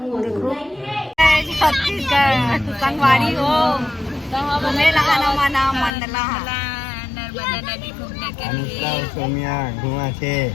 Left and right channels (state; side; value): drops out; right; at 5.9 s